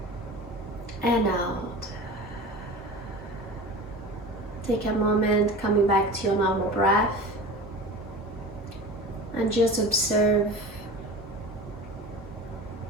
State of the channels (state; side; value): normal; both; correlation 0.34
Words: and out. Take a moment coming back to your normal breath and just observe